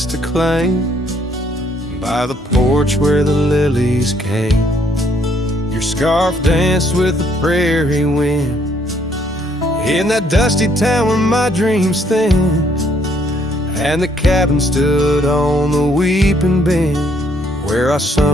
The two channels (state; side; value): normal; both; correlation 0.67